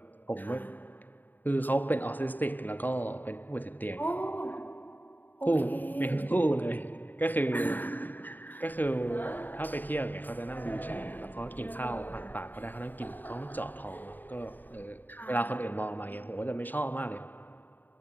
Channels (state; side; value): late; right; 0.088 ms